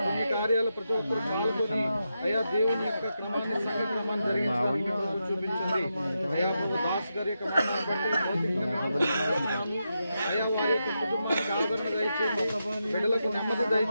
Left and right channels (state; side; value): inverted; both; correlation -0.86